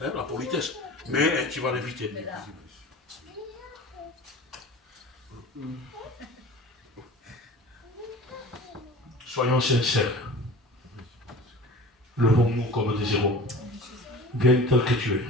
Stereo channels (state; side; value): normal; both; correlation 0.39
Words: hein, la politesse. Mais tu vas l'éviter. Soyons sincères. Levons-nous comme des héros. Viens tel que tu es.